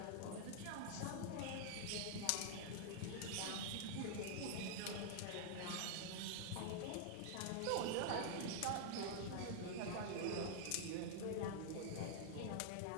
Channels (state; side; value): different; both; correlation -0.01